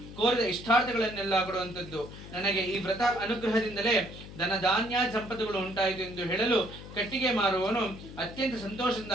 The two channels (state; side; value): noise; left; hum, 14 dB below the sound